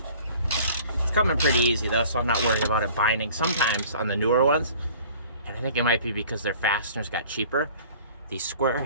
It's coming pretty easy though, so I'm not worried about it binding. Sometimes on the newer ones, and I think it might be because their fasteners got cheaper, the square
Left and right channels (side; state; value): both; inverted; correlation -0.49